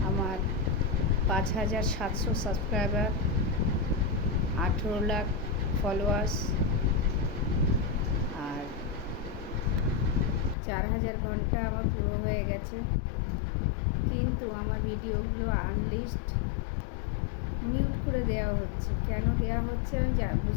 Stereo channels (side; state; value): right; drops out; at 10.6 s